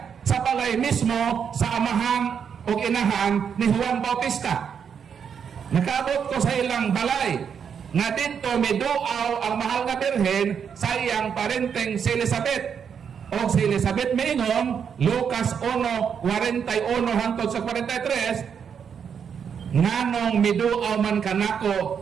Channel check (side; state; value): left; quieter; 7.3 dB